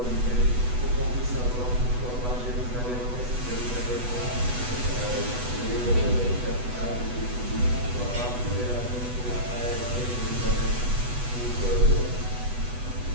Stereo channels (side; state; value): left; late; 8.1 ms